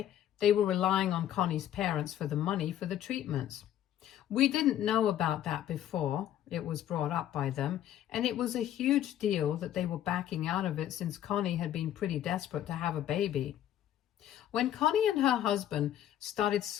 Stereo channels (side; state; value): right; quieter; 11.4 dB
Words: they were relying on Connie's parents for the money for the treatments. We didn't know about that before it was brought up by them, and it was a huge deal that they were backing out of it since Connie had been pretty desperate to have a baby. When Connie and her husband started